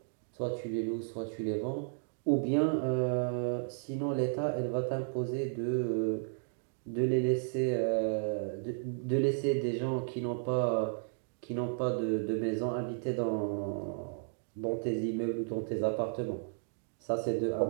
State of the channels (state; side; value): silent; left; digital silence